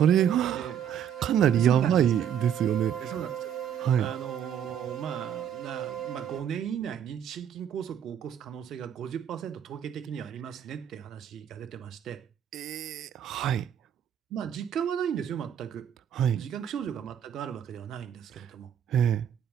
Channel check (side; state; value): left; quieter; 9.1 dB